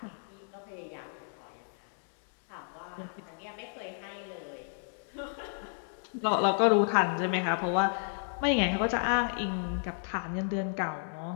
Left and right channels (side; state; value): right; silent; digital silence